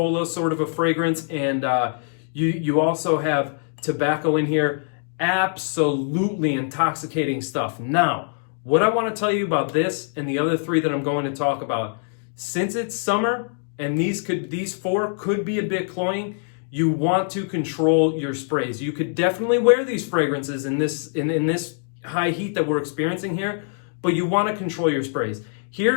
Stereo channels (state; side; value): silent; right; 63 dB below the other